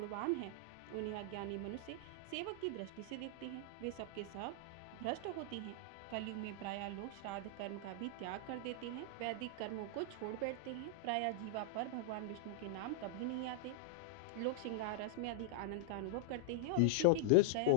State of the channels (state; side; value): different; both; correlation -0.01